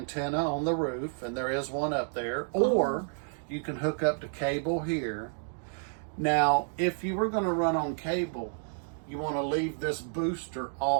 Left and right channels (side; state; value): left; silent; 58 dB below the other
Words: on the roof, and there is one up there, or you can hook up to cable here. Now, if you were going to run on cable, you want to leave this booster